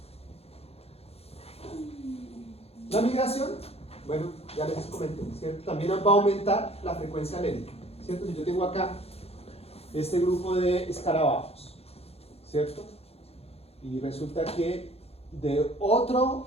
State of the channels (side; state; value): right; late; 0.29 ms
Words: La migración, bueno, ya les comenté, ¿cierto? También va a aumentar la frecuencia alélica, ¿cierto? Si yo tengo acá este grupo de escarabajos, ¿cierto? Y resulta que de otro